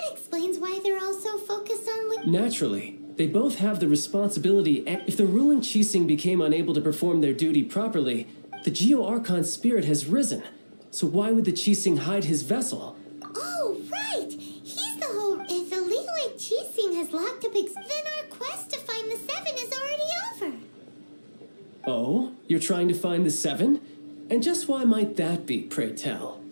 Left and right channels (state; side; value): inverted; both; correlation -1.00